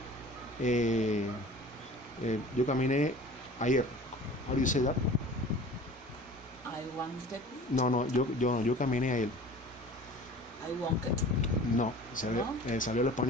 ayer. How do you say that? I wanted. No, yo caminé ayer. I wanted. No, salió el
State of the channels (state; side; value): normal; both; correlation 0.43